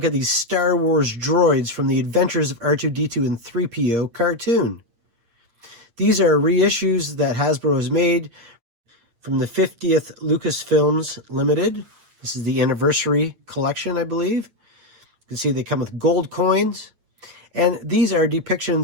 at these Star Wars droids from the Adventures of R2-D2 and 3PO cartoon. These are reissues that Hasbro has made from the 50th Lucasfilms Limited. This is the anniversary collection, I believe. You can see they come with gold coins. And these are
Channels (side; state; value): left; late; 8.8 ms